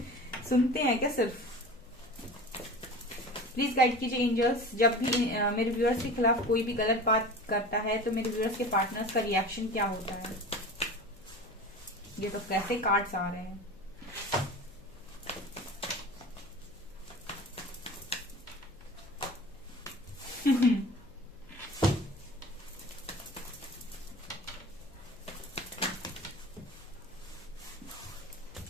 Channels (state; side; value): noise; left; hum, 25 dB below the sound